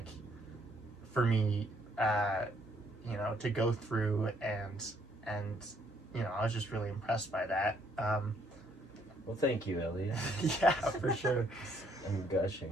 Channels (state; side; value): normal; both; correlation 0.68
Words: for me, to go through, and I was just really impressed by that. Well, thank you, Elliot. Yeah, for sure. I'm